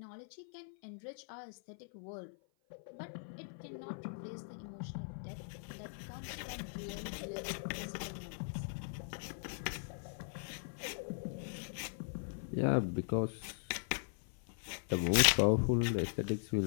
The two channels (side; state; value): right; silent; 51 dB below the other